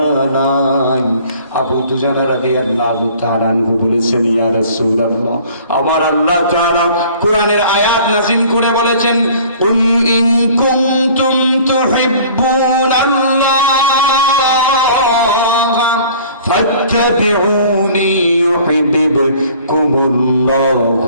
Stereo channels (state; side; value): inverted; both; correlation -0.50